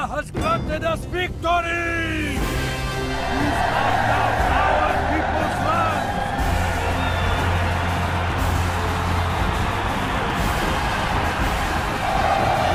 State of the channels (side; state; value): both; identical; correlation 1.00